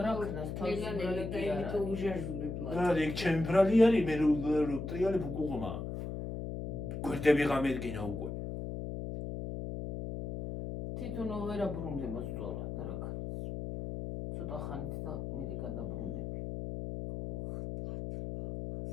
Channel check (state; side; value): noise; left; hum, 5 dB below the sound